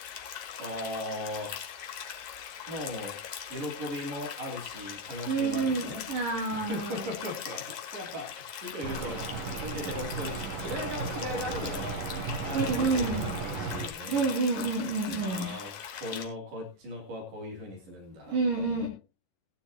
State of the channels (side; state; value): left; late; 11 ms